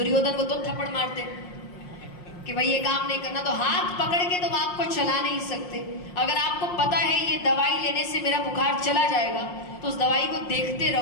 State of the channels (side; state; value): right; late; 5.6 ms